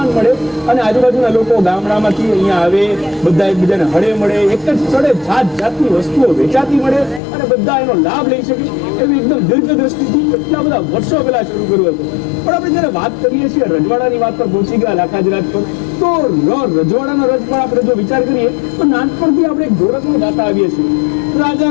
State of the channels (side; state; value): right; drops out; at 7.2 s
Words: મળે અને આજુબાજુના લોકો ગામડામાંથી અહીંયા આવે, બધા એકબીજાને હળે મળે, એક જ સ્થળે જાત જાતની વસ્તુઓ વેચાતી મળે અને બધા એનો લાભ લઈ શકે, એવી એકદમ દીર્ઘદ્રષ્ટિથી એટલા બધા વર્ષો પહેલા શરૂ કર્યું હતું। પણ આપણે જયારે વાત કરીએ છીએ રજવાડાની વાત પર પહોંચી ગયા લાખાજીરાજ પર, તો રજવાડાનો રજ પર આપણે જો વિચાર કરીએ તો નાનપણથી આપણે એક ઢોરકમાં ગાતા આવીએ છીએ,